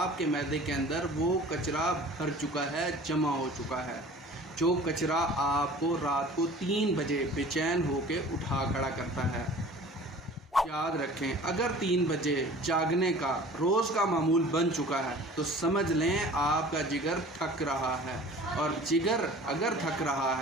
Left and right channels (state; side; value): normal; both; correlation 0.45